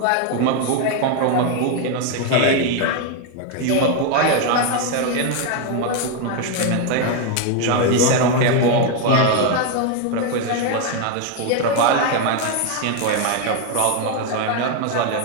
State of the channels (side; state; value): both; different; correlation 0.01